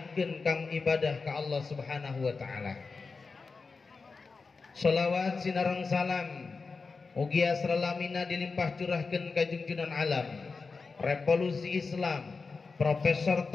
kang ibadah ka Allah Subhanahu wa taala. Shalawat sinareng salam mugi asralamina dilimpah curahkeun ka junjunan alam, revolusi Islam, profesor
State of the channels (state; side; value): quieter; right; 4.4 dB